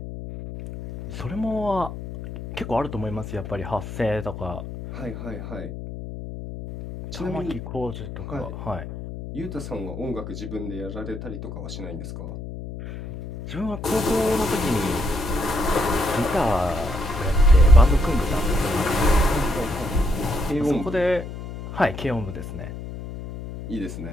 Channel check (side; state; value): left; noise; hum, 9 dB below the sound